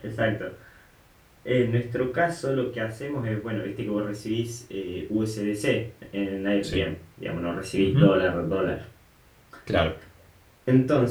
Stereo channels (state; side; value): identical; both; correlation 1.00